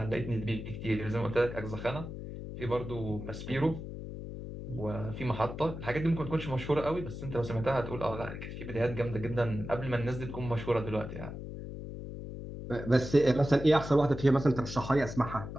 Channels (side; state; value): left; noise; hum, 9 dB below the sound